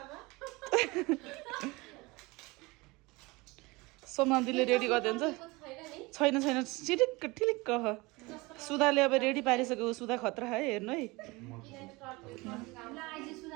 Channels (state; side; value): quieter; left; 23.6 dB